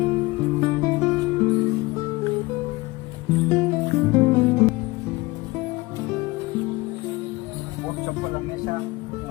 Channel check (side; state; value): right; quieter; 22.0 dB